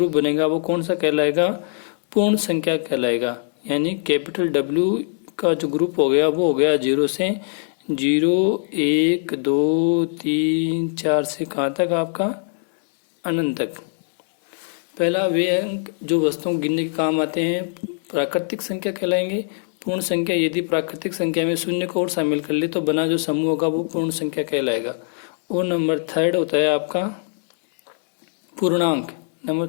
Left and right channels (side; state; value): right; silent; digital silence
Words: बनेगा, वो कौन सा कहलाएगा? पूर्ण संख्या कहलाएगा। यानी कैपिटल W का जो ग्रुप हो गया वो हो गया 0 से 0 1 2 3 4 से कहाँ तक आपका? अनंत तक। पहला वे अंक जो वस्तुओं गिनने के काम आते हैं प्राकृतिक संख्या कहलाएंगे। पूर्ण संख्या यदि प्राकृतिक संख्या में शून्य को और शामिल कर ले तो बना जो समूह होगा वो पूर्ण संख्या कहलाएगा। और नंबर 3 होता है आपका पूर्णांक। नंबर